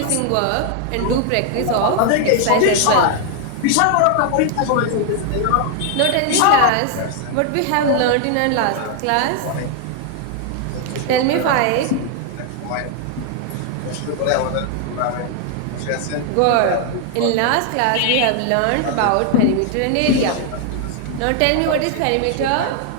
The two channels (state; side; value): different; both; correlation 0.00